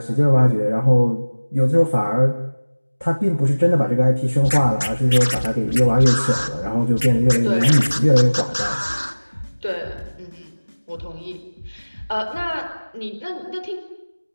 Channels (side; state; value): both; inverted; correlation -1.00